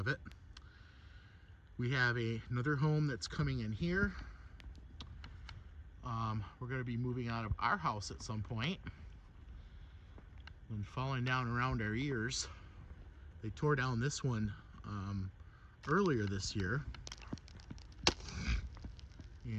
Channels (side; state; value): both; identical; correlation 1.00